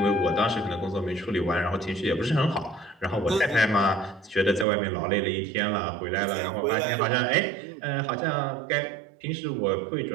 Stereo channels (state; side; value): drops out; left; at 4.7 s